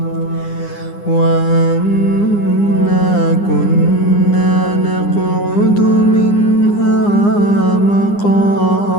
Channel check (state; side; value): late; right; 9.8 ms